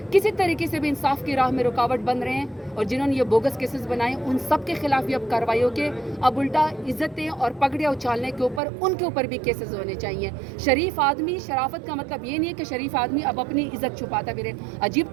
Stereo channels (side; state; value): left; drops out; at 8.6 s